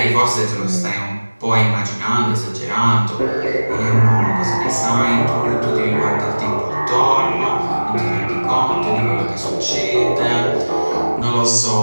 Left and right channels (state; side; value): inverted; both; correlation -1.00